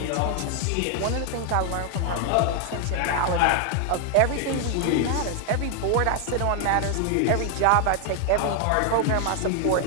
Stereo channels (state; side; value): different; both; correlation 0.00